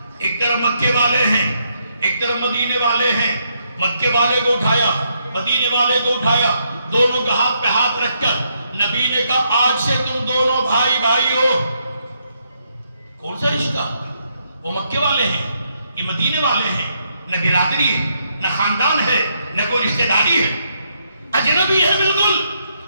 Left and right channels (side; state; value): both; inverted; correlation -0.76